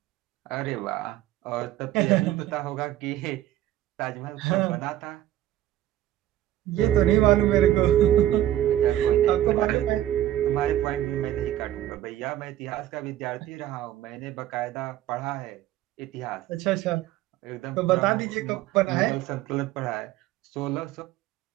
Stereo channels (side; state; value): left; quieter; 12.9 dB